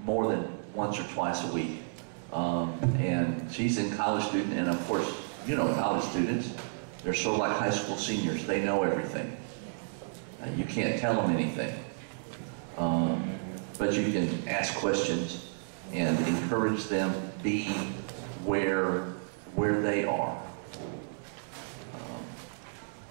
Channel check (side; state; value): left; silent; digital silence